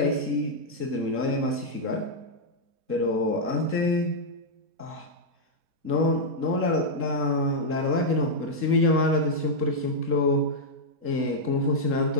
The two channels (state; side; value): late; left; 3.7 ms